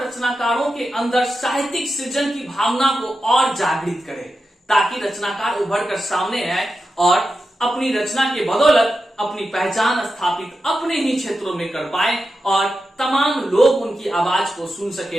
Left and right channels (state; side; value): normal; both; correlation 0.90